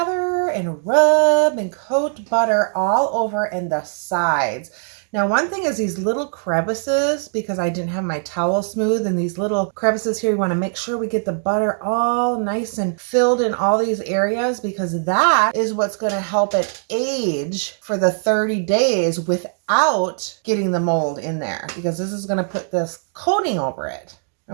and rub and coat butter all over in the sides. Now, one thing is these little crevices, because I didn't have my towel smooth, and these little crevices here, you want to make sure we get the butter all nice and filled in all these areas, because that is what's going to help it age for the 30 days without getting the mold in there, because this is going to put this coating over it.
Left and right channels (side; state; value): left; silent; digital silence